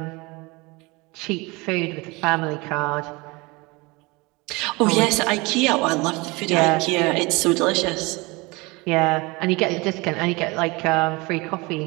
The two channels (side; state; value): left; quieter; 25.0 dB